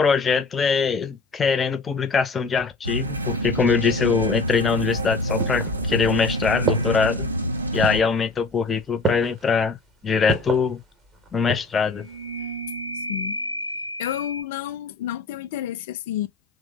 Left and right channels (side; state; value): right; quieter; 3.9 dB